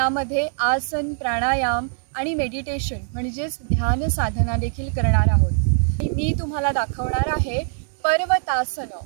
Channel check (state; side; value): silent; left; 64 dB below the other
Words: आसन, प्राणायाम आणि मेडिटेशन म्हणजेच ध्यान साधना देखील करणार आहोत. मी तुम्हाला दाखवणार आहे पर्वतासन,